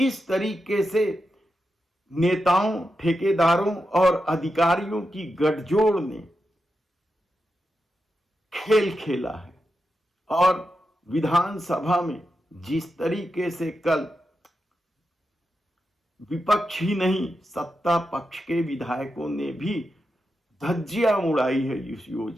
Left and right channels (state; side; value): normal; both; correlation 0.88